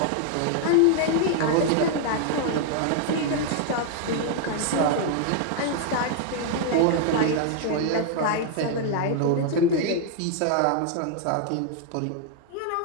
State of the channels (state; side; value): different; both; correlation 0.00